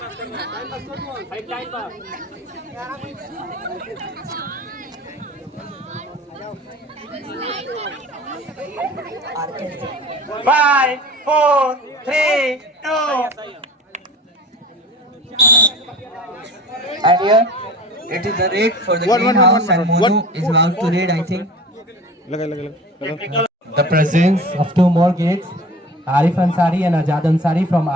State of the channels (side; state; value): both; normal; correlation 0.38